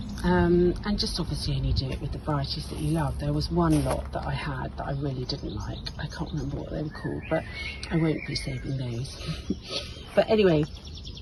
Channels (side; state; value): both; identical; correlation 1.00